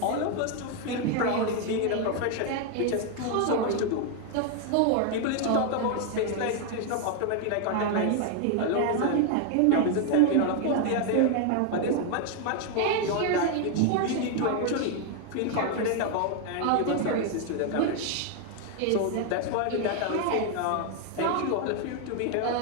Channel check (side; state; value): both; different; correlation 0.01